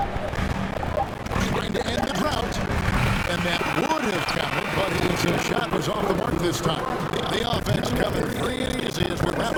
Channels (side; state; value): both; identical; correlation 1.00